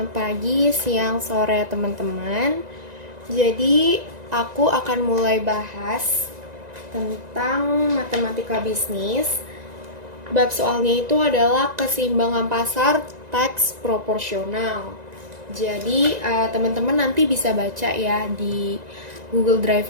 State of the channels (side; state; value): left; late; 1.9 ms